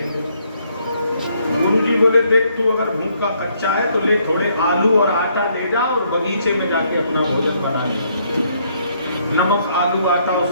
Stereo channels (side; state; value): both; inverted; correlation -0.70